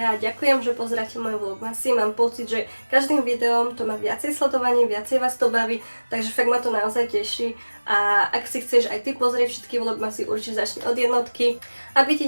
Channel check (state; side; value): inverted; both; correlation -1.00